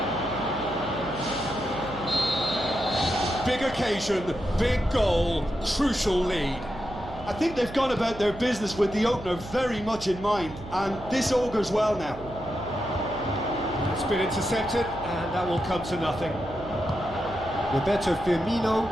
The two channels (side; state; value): right; noise; hum, 16 dB below the sound